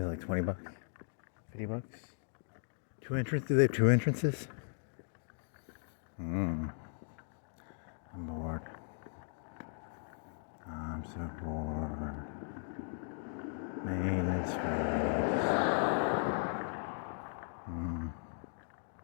like $20, $50. 2 entrances? Do they have 2 entrances? I'm bored. I'm so bored. Maintenance fees.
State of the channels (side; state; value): right; silent; digital silence